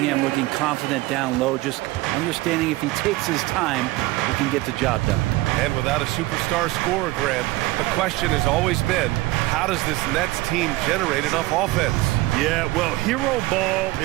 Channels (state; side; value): quieter; left; 19.4 dB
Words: looking confident down low, just understanding if he takes his time, he can get the job done. And without a superstar scorer, Grant, the question has always been, how does this Nets team generate enough offense? Yeah, well, hero ball